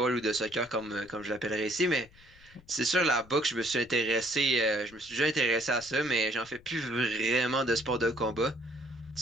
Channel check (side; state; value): left; noise; rumble, 26 dB below the sound